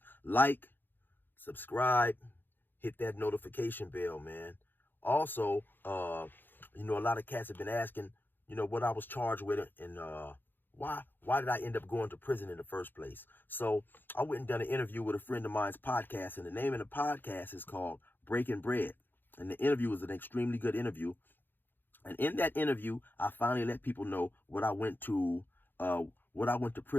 like, subscribe, hit that notification bell, man. Also, a lot of cats have been asking, what I was charged with and why did I end up going to prison in the first place? So I went and done an interview with a friend of mine's podcast, and the name of the podcast is called Breaking Bread. And the interview was an extremely good interview. And in that interview, I finally let people know what I went to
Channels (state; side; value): late; right; 0.095 ms